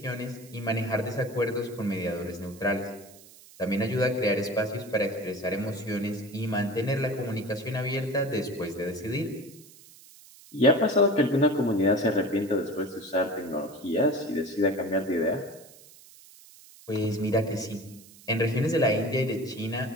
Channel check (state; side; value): noise; right; hiss, 22 dB below the sound